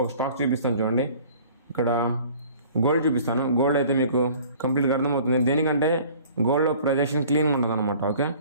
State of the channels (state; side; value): inverted; both; correlation -0.49